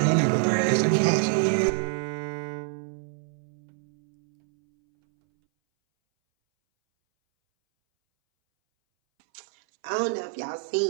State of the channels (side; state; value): left; silent; 61 dB below the other